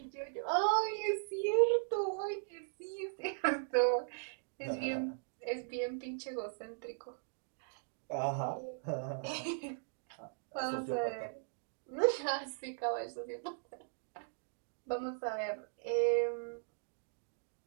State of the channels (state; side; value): silent; left; digital silence